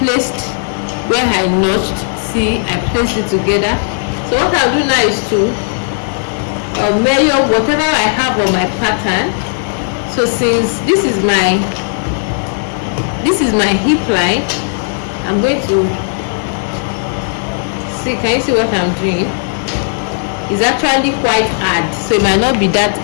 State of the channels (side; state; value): right; silent; digital silence